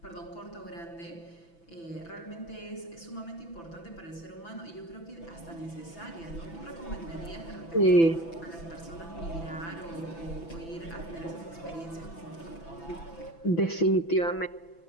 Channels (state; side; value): late; right; 6.0 ms